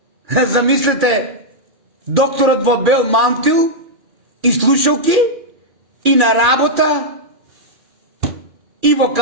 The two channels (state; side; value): late; left; 2.4 ms